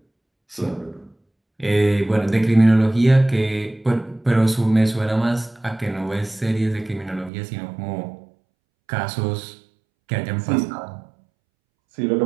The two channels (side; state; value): left; drops out; at 7.3 s